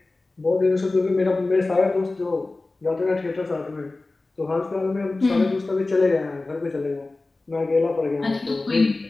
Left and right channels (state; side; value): quieter; right; 3.2 dB